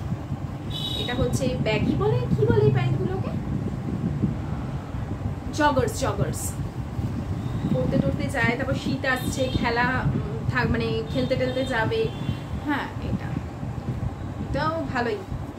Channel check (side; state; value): both; identical; correlation 1.00